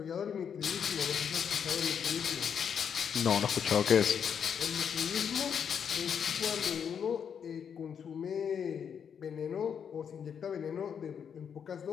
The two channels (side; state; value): right; quieter; 7.5 dB